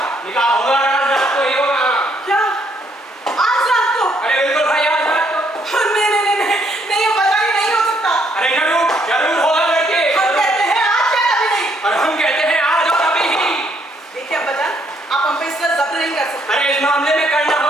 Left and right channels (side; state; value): both; normal; correlation 0.70